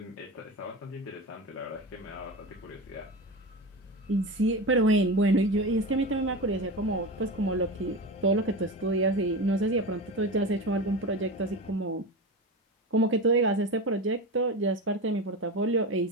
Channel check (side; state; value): both; normal; correlation 0.24